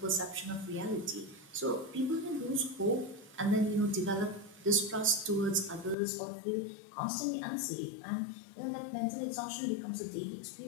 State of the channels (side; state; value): right; drops out; at 6.0 s